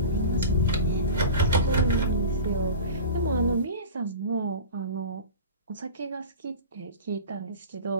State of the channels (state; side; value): inverted; both; correlation -0.33